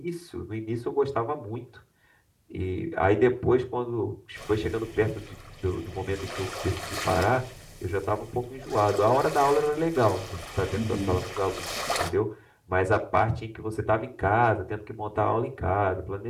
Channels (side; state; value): both; identical; correlation 1.00